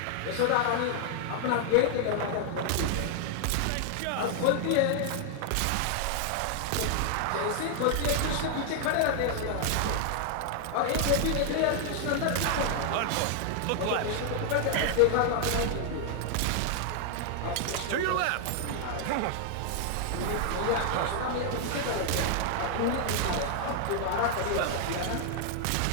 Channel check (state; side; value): different; both; correlation 0.00